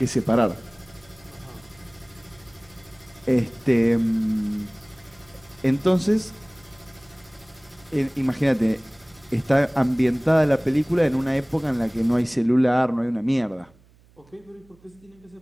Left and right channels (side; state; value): right; noise; hum, 29 dB below the sound